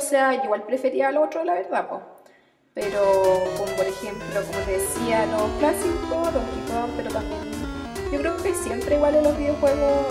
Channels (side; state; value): both; identical; correlation 1.00